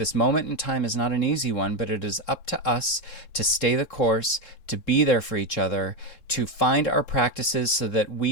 moment in time is not an easy one, but it is up to us to stay the course, to be there for each other, to find our practices so that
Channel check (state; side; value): late; right; 3.7 ms